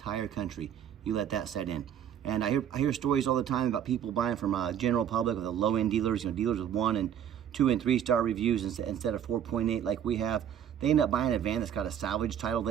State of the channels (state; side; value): quieter; left; 9.5 dB